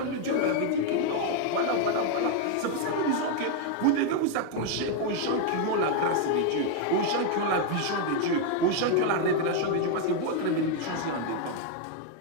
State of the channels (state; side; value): different; both; correlation 0.01